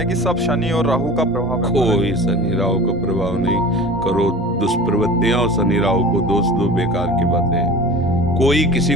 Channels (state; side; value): normal; both; correlation 0.37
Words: कि सब शनि और राहु का प्रभाव है। कोई शनि राहु का प्रभाव नहीं। करो दुष्प्रवृत्तियां और शनि राहु को दोष दो, बेकार की बातें हैं। कोई किसी